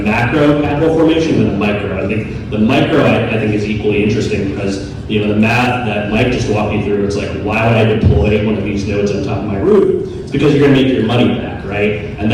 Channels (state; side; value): identical; both; correlation 1.00